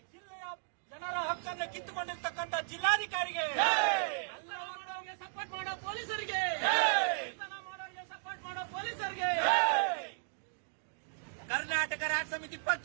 ಜಿಲ್ಲೆಯ ಜನರ ಹಕ್ಕನ್ನು ಕಿತ್ತುಕೊಂಡಿರ್ತಕ್ಕಂಥ ಜಿಲ್ಲಾಧಿಕಾರಿಗೆ, ಎಲ್ಲವನ್ನವರಿಗೆ ಸಪೋರ್ಟ್ ಮಾಡೋ ಪೊಲೀಸರಿಗೆ, ಮಾಡೋರಿಗೆ ಸಪೋರ್ಟ್ ಮಾಡೋ ಪೊಲೀಸರಿಗೆ, ಕರ್ನಾಟಕ ರಾಜ್ಯ ಸಮಿತಿ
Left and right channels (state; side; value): silent; left; digital silence